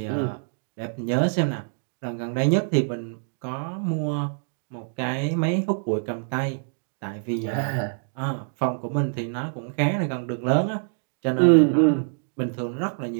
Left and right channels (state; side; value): silent; left; digital silence